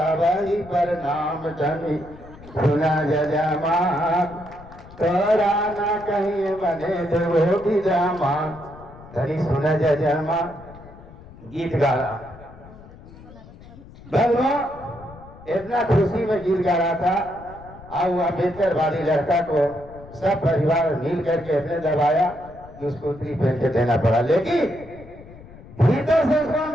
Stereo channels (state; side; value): noise; left; rumble, 19 dB below the sound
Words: प्रणाम तनी सुना जजमान तोरा ना कहीं बने देवो की जमान। तरी सुना जजमान गीत गा रहा भगवान, इतना खुशी में गीत गा रहा था। और वो अम्बेडकर वाली लड़का को सब परिवार मिल करके अपने दबाया कि उसको उत्तरी पहन के देना पड़ा। लेकिन भीतर से उसको